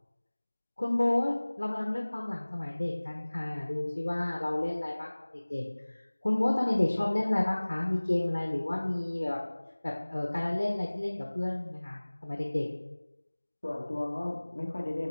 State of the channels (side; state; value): both; inverted; correlation -1.00